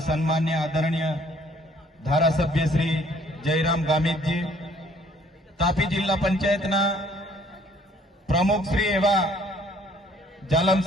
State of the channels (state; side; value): normal; both; correlation 0.60